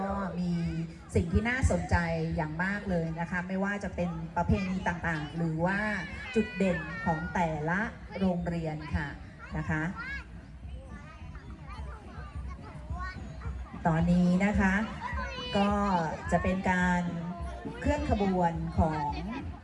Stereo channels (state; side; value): identical; both; correlation 1.00